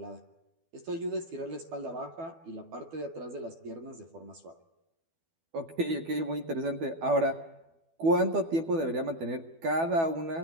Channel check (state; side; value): late; left; 12 ms